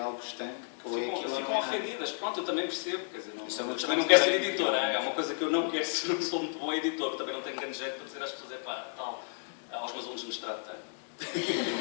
estanque, ou é aquilo. Ficam ofendidas. Pronto, eu também percebo. Quer dizer, também não quero ser editor. É uma coisa que eu não quero ser, não sou muito bom editor, também não tenho grande jeito para dizer às pessoas: aos meus alunos de mestrado tenho.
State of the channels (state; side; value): silent; right; digital silence